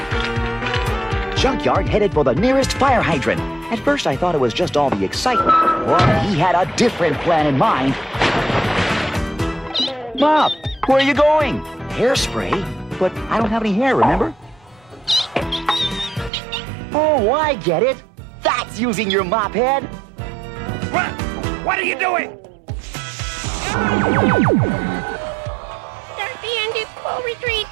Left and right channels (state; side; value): drops out; left; at 16.3 s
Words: Junkyard headed for the nearest fire hydrant. At first I thought it was just all the excitement, but he had a different plan in mind. Mop, where are you going? Hairspray? But I don't have any hair, remember? Oh, I get it. That's using your mop head. What are you doing? Start the ended full retreat